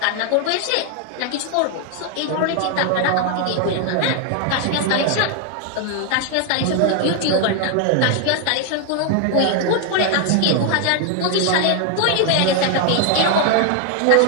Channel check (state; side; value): different; both; correlation 0.00